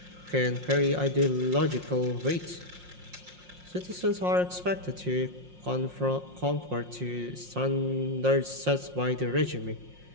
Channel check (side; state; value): left; late; 5.6 ms